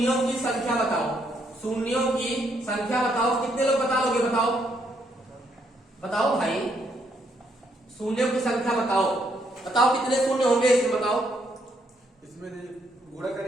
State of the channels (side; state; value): both; normal; correlation 0.73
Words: की संख्या बताओ, शून्यों की संख्या बताओ। कितने लोग बता लोगे, बताओ बताओ भाई, शून्यों की संख्या बताओ। बताओ कितने शून्य होंगे, इसमें बताओ। इसमें गुणा